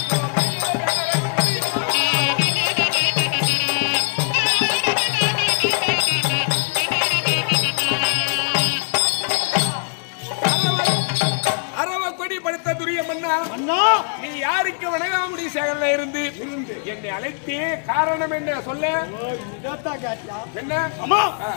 நீ யாருக்கு வணங்காமுடி சேகரில் இருந்து என்னை அழைத்தே காரணம் என்ன சொல்ல? என்ன அம்மா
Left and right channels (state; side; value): silent; right; 58 dB below the other